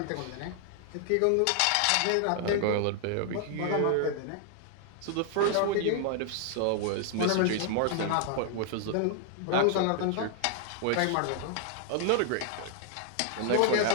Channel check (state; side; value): different; both; correlation 0.00